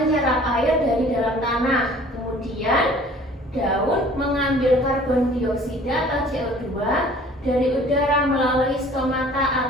air dari dalam tanah. Kemudian daun mengambil karbon dioksida atau CO2 dari udara melalui stomata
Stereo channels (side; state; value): both; normal; correlation 0.51